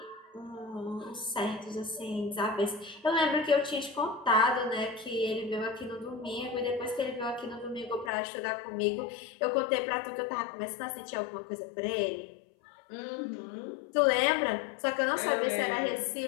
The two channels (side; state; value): right; drops out; at 8.1 s